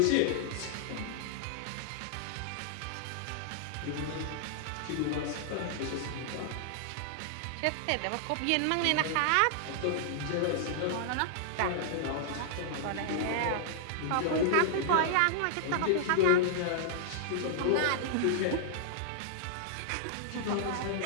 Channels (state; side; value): different; both; correlation -0.01